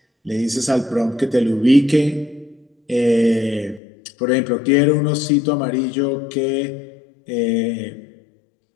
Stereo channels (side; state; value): right; drops out; at 3.8 s